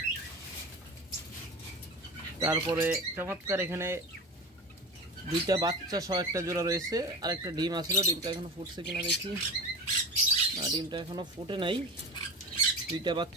তারপরে চমৎকার এখানে 2টা বাচ্চা সহ একটা জোড়া রয়েছে, আর একটা ডিম আসলো, ডিমটা এখনো ফুটছে কিনা দেখি, না ডিমটা এখনো ফুটে নাই। 2টা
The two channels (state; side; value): normal; both; correlation 0.31